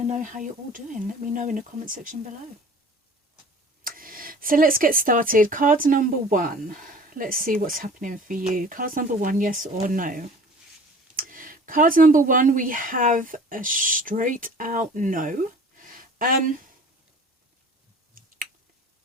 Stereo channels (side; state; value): both; normal; correlation 0.45